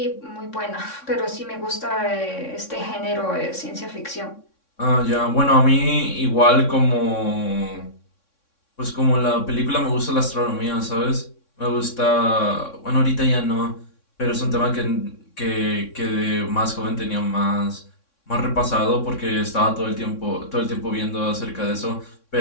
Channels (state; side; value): late; right; 3.6 ms